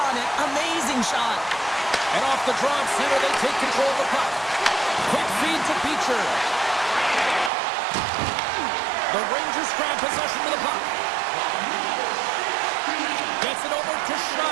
it. Amazing shot. And off the draw center, they take control of the puck. Quick feed to Beecher. The Rangers grab possession of the puck. Gets it over to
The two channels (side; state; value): left; drops out; at 7.5 s